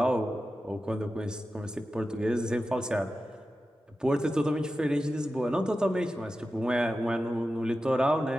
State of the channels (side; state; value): both; normal; correlation 0.92